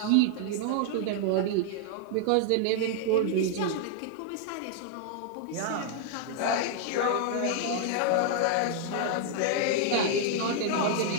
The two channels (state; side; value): different; both; correlation 0.00